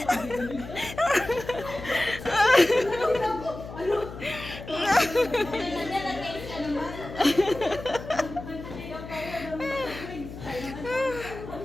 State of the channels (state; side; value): noise; left; hum, 12 dB below the sound